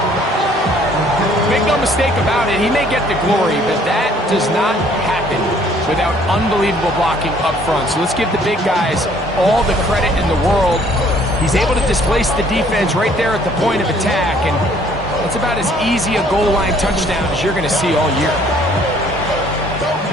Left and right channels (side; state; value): both; normal; correlation 0.60